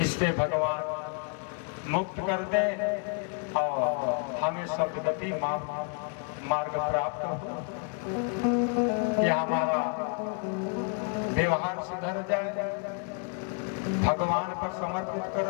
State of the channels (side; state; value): right; quieter; 39.0 dB